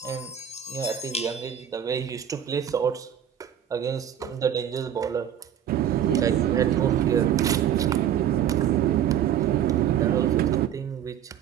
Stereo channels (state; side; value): quieter; left; 9.9 dB